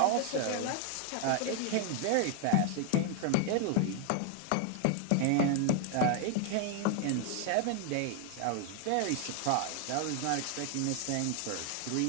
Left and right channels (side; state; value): both; different; correlation 0.00